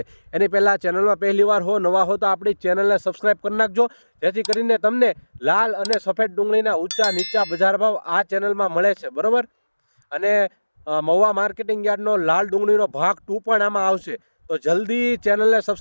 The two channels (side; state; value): both; inverted; correlation -1.00